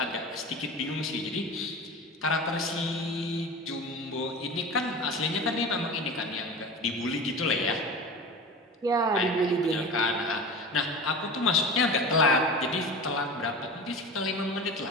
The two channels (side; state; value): both; normal; correlation 0.31